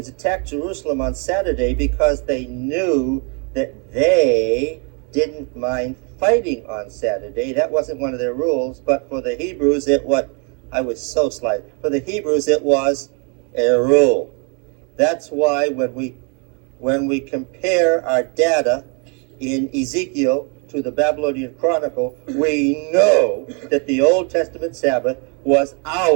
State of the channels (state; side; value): quieter; left; 35.8 dB